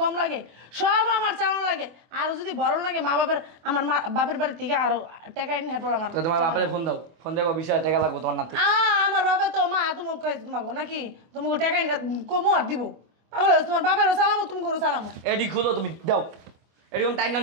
লাগে? সব আমার চালানো লাগে। আরো যদি বড় লাগে মা বাপের, আমার মা বাপের বাড়ি থেকে আরো টাকা এনে হেরপর আমার। তো তোমার বাপের ফোন দাও, ফোন দেখো 20,000 টাকা লাগবে তোমার নাতি। আমার বাবা তো মা তোমাকে তোমাকে নাকি তোমাকে টাকা এনে কমো আর দিব? পাগল হয়েছে? তোমার বাপেরও সালামো তুমি করো সালামো। এডি খুলো তুমি দাও। এরকম টাইম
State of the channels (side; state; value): left; late; 24 ms